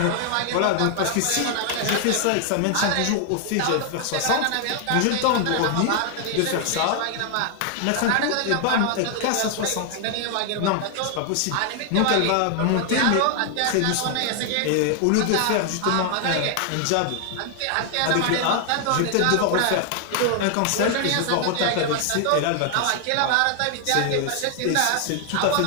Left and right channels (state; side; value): different; both; correlation 0.00